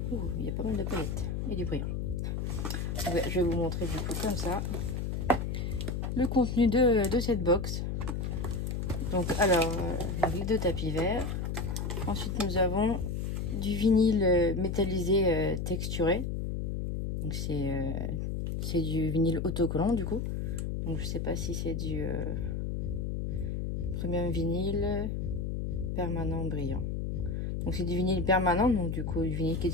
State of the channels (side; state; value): left; noise; hum, 2 dB below the sound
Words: il y a pas mal de palettes et du brillant. Je vais vous montrer du coup comme ça le contenu de cette box. Donc alors, les 2 tapis verts. Ensuite nous avons du vinyle métallisé texturé. Donc c'est du vinyle autocollant du coup. Donc je sais pas si c'est du premium vinyle permanent brillant. Donc c'est du vinyle permanent, donc du coup du vinyle qui